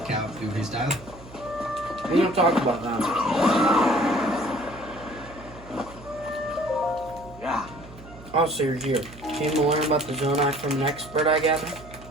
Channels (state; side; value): noise; right; hum, 18 dB below the sound